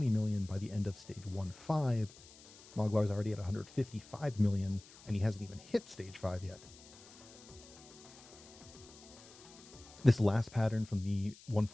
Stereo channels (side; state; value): left; noise; hiss, 21 dB below the sound